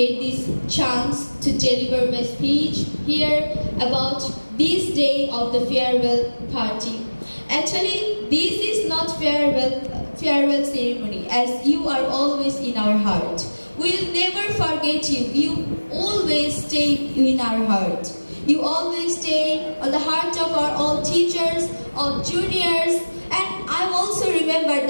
this chance to deliver my speech here about this day of the farewell party. Actually, this is not farewell ceremony, as you are always in our heart. We'll never forget you. You always stay in our heart. You always stay on the heart of our all teachers, all juniors, and I also remember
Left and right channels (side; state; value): both; inverted; correlation -1.00